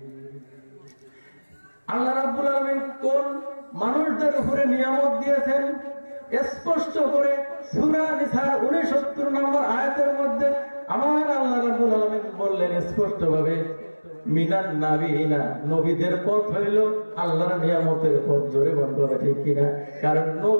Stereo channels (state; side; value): inverted; both; correlation -1.00